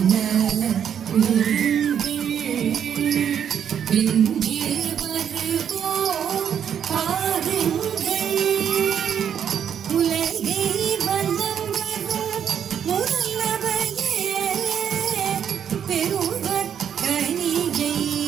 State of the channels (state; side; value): quieter; left; 8.6 dB